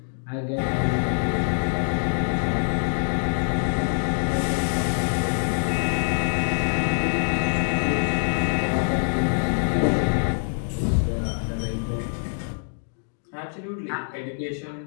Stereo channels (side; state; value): right; silent; digital silence